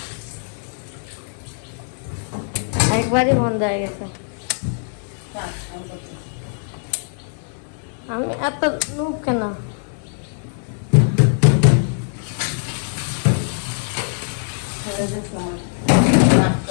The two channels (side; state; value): right; silent; 64 dB below the other